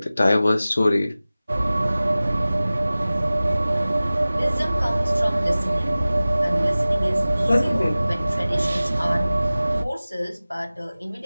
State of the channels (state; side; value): inverted; both; correlation -0.97